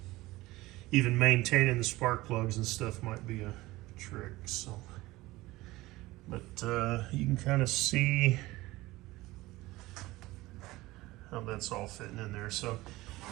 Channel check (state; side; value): quieter; left; 19.1 dB